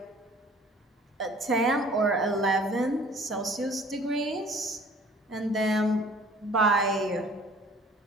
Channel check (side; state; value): both; normal; correlation 0.51